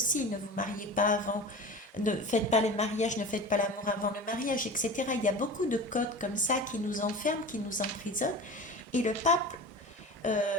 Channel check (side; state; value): both; normal; correlation 0.33